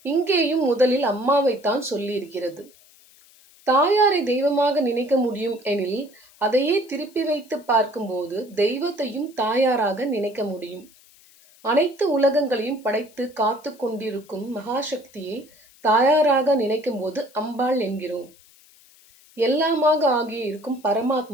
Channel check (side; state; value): left; noise; hiss, 27 dB below the sound